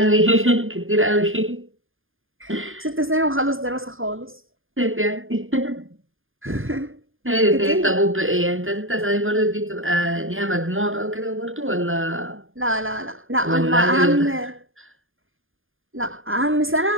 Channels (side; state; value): left; late; 0.59 ms